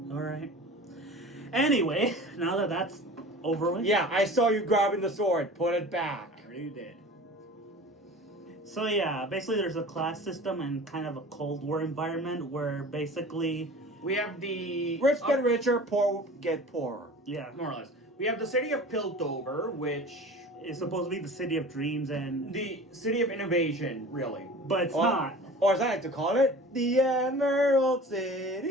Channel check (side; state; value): both; normal; correlation 0.40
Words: All right. Anyway, now that that's over with. Yeah, I saw you grabbing the sword. Put it back. I already did. So yeah, basically there's a class system and kind of a Cold War environment where basically We have the Rich get richer, poor get poorer. yeah, more or less. We have the city of Piltover, which it's supposed to be the city of dreams and the city of innovation, really. but it's not. Or as I like to call it, the Emerald